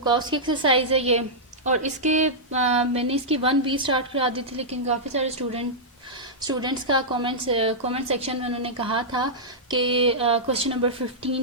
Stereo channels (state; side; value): normal; both; correlation -0.10